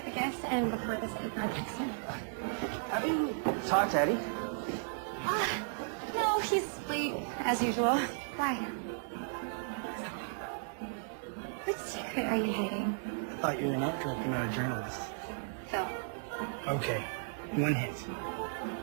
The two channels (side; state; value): left; silent; 55 dB below the other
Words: the gifts and before this other project's done. Have you talked to Eddie? No, he's late, as usual. Why? What secret are you hiding? I thought you were an art director, not a journalist. Phil. Okay, one hint.